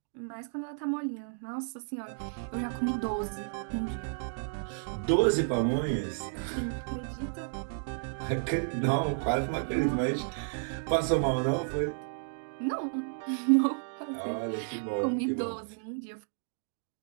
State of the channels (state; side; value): silent; left; digital silence